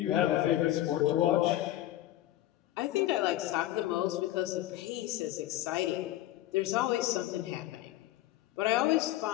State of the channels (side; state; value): right; quieter; 14.6 dB